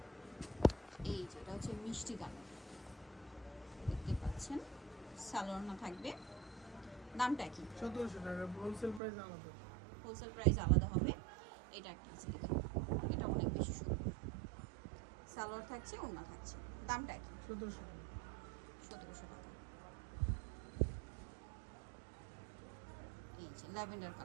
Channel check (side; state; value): left; drops out; at 9.0 s